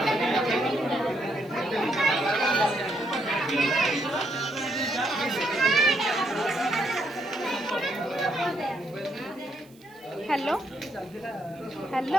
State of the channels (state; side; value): noise; right; hiss, 28 dB below the sound